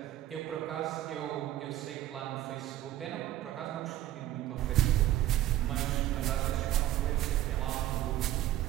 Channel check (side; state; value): left; quieter; 13.5 dB